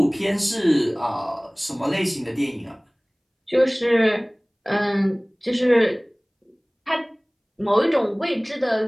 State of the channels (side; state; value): both; identical; correlation 1.00